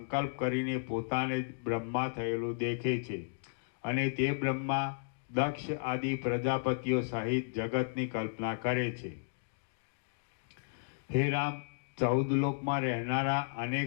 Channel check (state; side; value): silent; right; digital silence